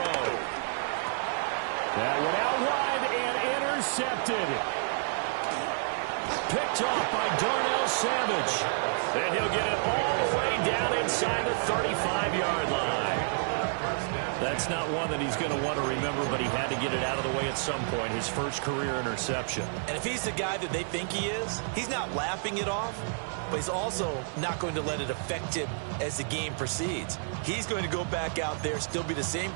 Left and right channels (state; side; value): silent; left; digital silence